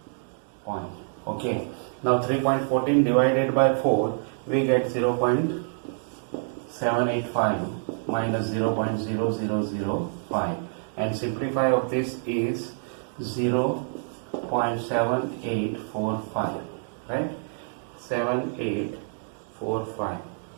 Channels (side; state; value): left; silent; digital silence